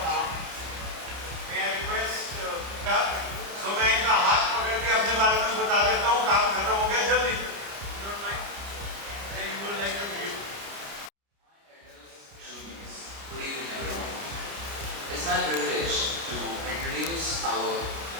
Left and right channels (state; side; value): late; left; 30 ms